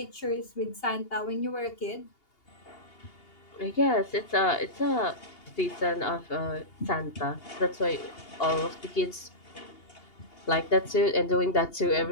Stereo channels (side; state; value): right; late; 2.8 ms